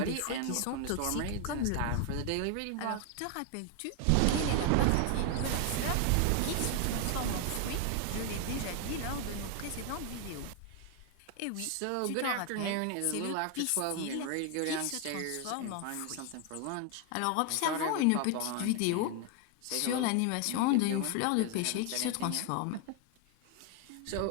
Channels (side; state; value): both; different; correlation 0.01